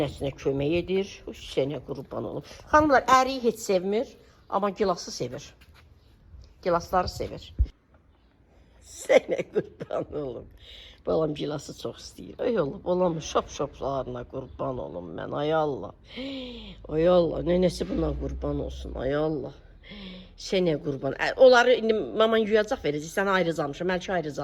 kömək edir. Sənə qurban olum. Xanımlar, əriyi heç sevmir, amma gilası sevir. Gilasları sevir. Sənə qurban olum. Balam gilası çox istəyir. Ay Allah, balamın şap-şaplarına qurban olum mən. Ay Allah. Ay Allah, nənəsi buna qurban olsun. Ay Allah. Sənə qurban. Onları indi mama yuyacaq verəcək. Sənə ayrıc almışam, Məlki ayrıc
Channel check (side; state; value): both; identical; correlation 1.00